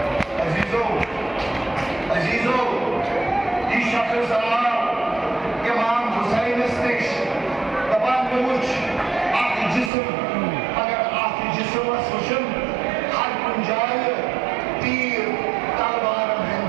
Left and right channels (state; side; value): drops out; left; at 9.9 s